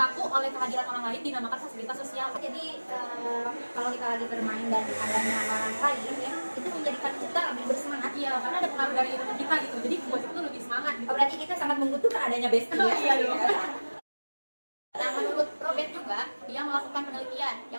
oleh kehadiran orang lain dinamakan fasilitas sosial. Jadi kalau kita lagi bermain dan adanya orang lain ya, itu menjadikan kita lebih bersemangat. Iya, karena ada pengaruh dari teman kita gitu. Jadi buat itu lebih semangat gitu. Oh, berarti kita sangat membutuhkan adanya bestie ya. Iya, iya. Nah, menurut Robert juga, dia melakukan penelitian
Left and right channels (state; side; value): inverted; both; correlation -1.00